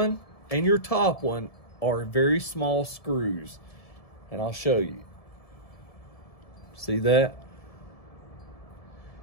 and your top one are very small screws. And I'll show you. See that?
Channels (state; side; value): late; right; 1.7 ms